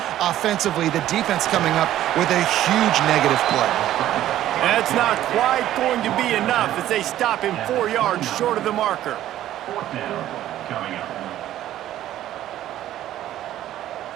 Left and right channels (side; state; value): left; quieter; 12.9 dB